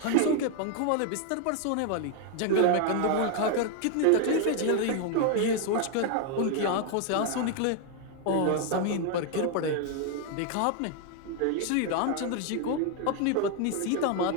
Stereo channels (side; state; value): both; different; correlation 0.00